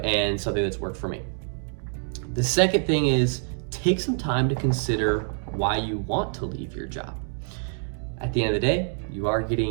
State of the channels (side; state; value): left; silent; 59 dB below the other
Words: something that's worked for me. The second thing is take some time to consider why you want to leave your job. At the end of the day, you are